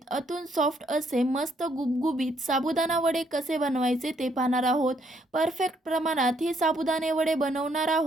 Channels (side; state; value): both; normal; correlation 0.70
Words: आतून सॉफ्ट असे मस्त गुबगुबीत साबुदाणा वडे कसे बनवायचे ते पाहणार आहोत. परफेक्ट प्रमाणात हे साबुदाणे वडे बनवणार